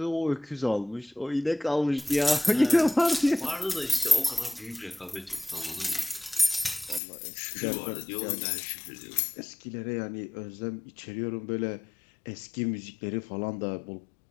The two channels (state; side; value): drops out; right; at 7.0 s